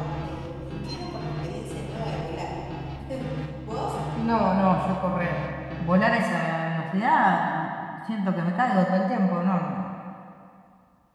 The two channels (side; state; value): both; identical; correlation 1.00